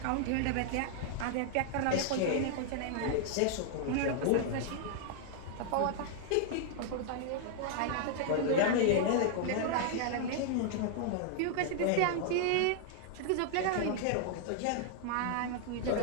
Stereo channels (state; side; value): different; both; correlation -0.01